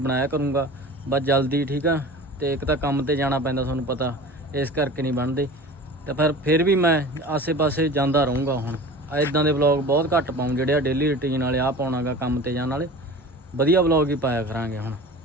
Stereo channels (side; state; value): both; normal; correlation 0.37